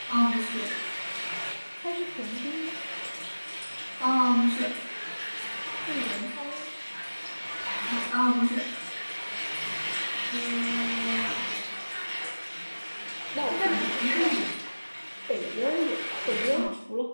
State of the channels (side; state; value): both; inverted; correlation -1.00